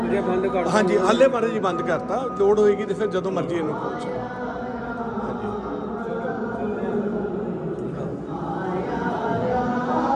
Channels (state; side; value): identical; both; correlation 1.00